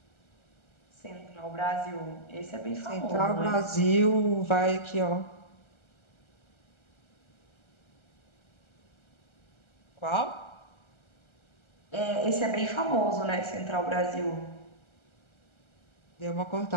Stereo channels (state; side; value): late; right; 1.3 ms